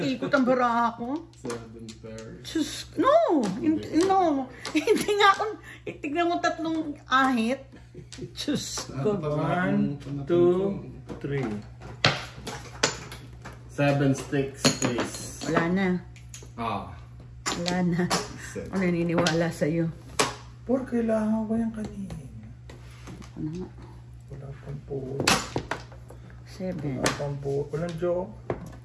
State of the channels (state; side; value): identical; both; correlation 1.00